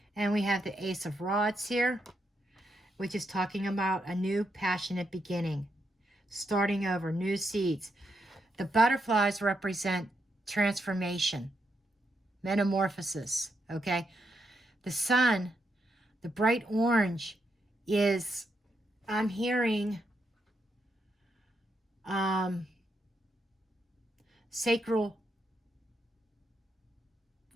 And we have the Ace of Rods here, which is talking about a new passionate beginning. Starting over, new seeds. The butterflies represent transformation, metamorphosis, okay? The sun, the bright orange, is, I'm hearing, sacral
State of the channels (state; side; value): normal; both; correlation 0.81